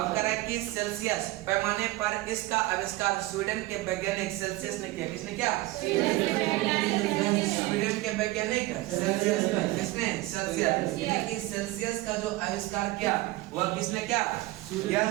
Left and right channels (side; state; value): left; quieter; 19.1 dB